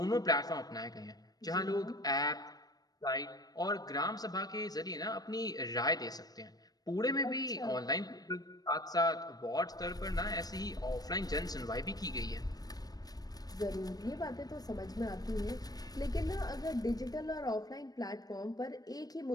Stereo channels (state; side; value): late; right; 0.19 ms